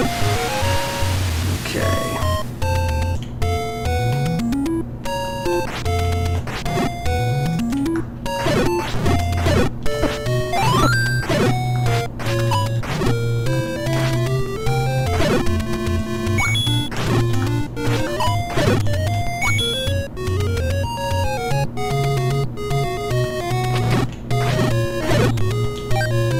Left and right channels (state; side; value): identical; both; correlation 1.00